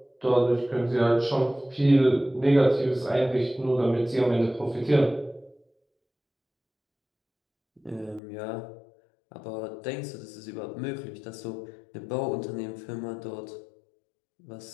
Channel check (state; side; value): drops out; right; at 8.2 s